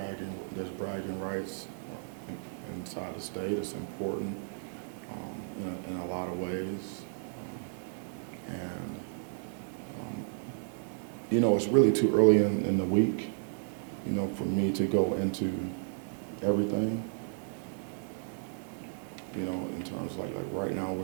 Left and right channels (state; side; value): silent; left; digital silence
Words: rights inside the state. It's important in a lot of ways. And, you know, it's really too early in the week, you know, for me to go into everything. You know, in terms of like right now